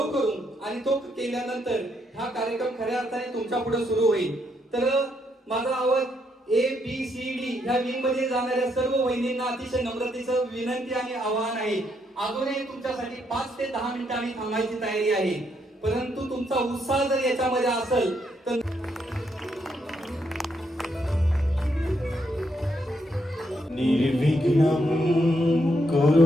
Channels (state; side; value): normal; both; correlation 0.76